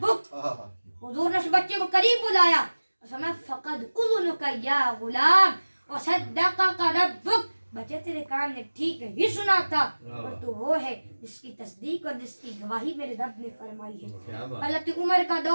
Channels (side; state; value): both; inverted; correlation -1.00